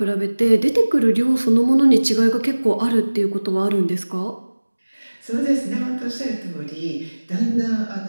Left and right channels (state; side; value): inverted; both; correlation -1.00